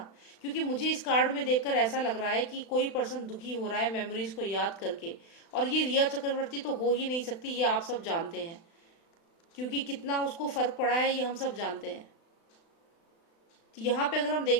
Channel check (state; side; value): late; right; 36 ms